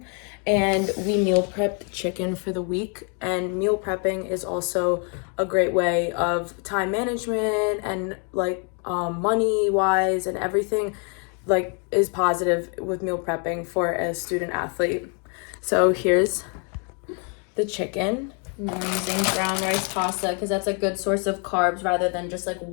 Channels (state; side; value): quieter; right; 38.4 dB